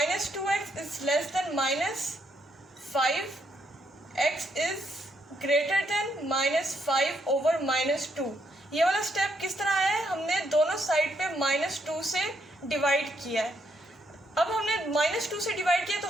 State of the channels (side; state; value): both; normal; correlation 0.75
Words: 2x is less than minus 5x is greater than minus 5 over minus 2। ये वाला स्टेप किस तरह है, हमने दोनों साइड पे माइनस 2 से डिवाइड किया है। अब हमने माइनस 2 से डिवाइड किया तो